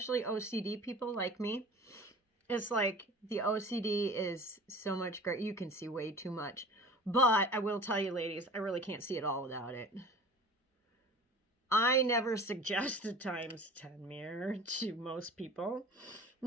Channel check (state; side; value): normal; both; correlation 0.41